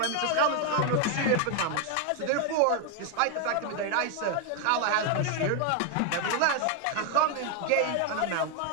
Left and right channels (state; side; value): different; both; correlation 0.01